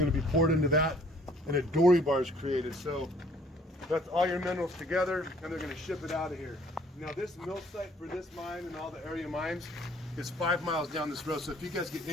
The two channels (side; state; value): both; normal; correlation 0.59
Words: to be poured into that, and a dory bar is created. So that's all your minerals together, and they're going to ship it out of here. Now this mill site for this mine and all the area mines is 5 miles down this road. So if you guys get